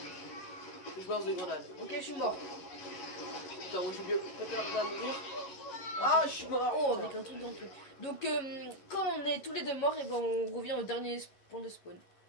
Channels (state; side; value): late; right; 11 ms